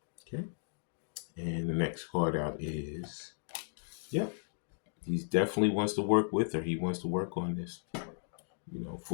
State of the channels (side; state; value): right; silent; digital silence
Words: Okay. And the next card out is, yep. He definitely wants to work with her. He wants to work on this. You know,